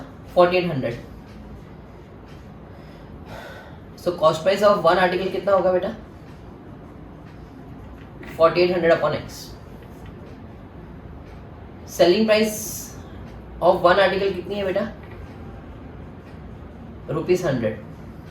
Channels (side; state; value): both; identical; correlation 1.00